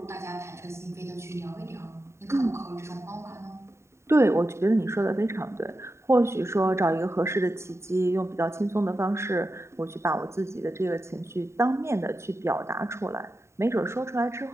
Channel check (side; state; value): left; late; 0.13 ms